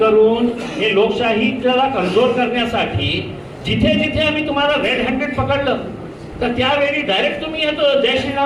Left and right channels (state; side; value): identical; both; correlation 1.00